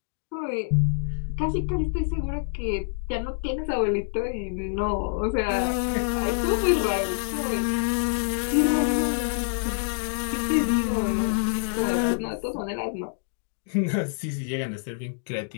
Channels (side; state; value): right; silent; digital silence